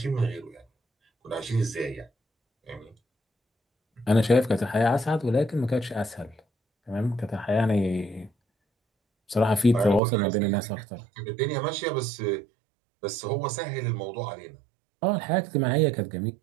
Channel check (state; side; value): drops out; left; at 10.0 s